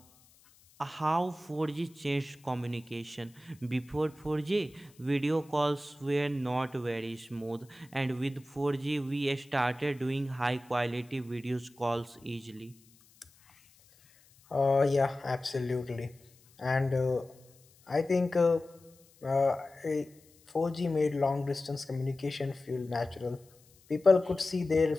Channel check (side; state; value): left; noise; hiss, 29 dB below the sound